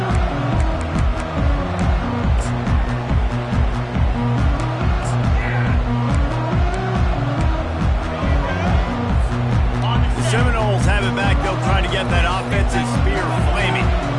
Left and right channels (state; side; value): identical; both; correlation 1.00